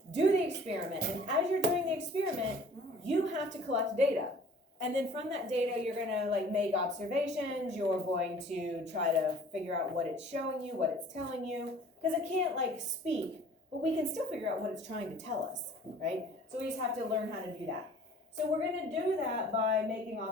do the experiment, and as you're doing the experiment, you have to collect data. And then from that data, you're gonna like make observations, you're going to try to figure out what it's showing you, what it's telling you, because it can't like speak, but we can still figure out what it's trying to tell us, right? So we just have to learn how to do that. So we're gonna do that by making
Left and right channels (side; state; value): both; normal; correlation 0.50